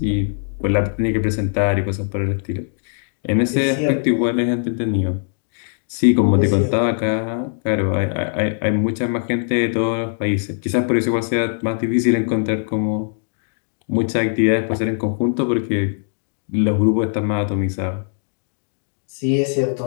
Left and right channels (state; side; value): silent; right; digital silence